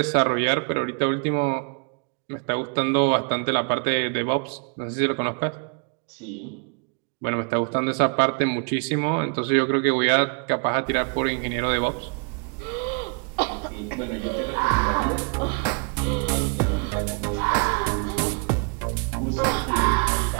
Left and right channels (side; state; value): left; quieter; 36.9 dB